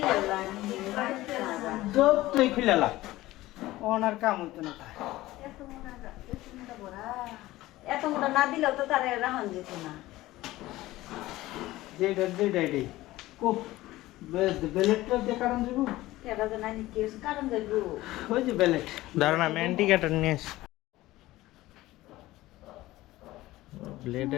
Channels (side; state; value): right; quieter; 17.2 dB